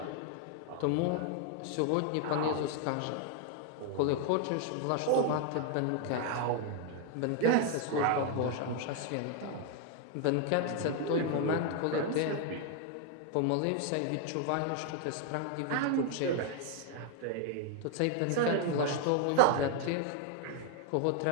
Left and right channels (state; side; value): different; both; correlation 0.00